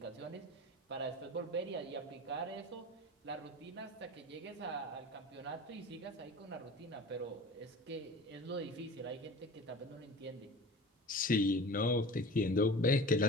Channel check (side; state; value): both; normal; correlation 0.38